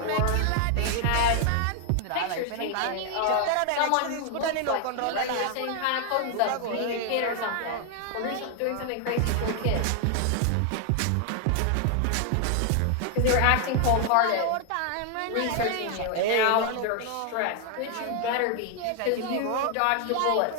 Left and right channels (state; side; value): different; both; correlation 0.00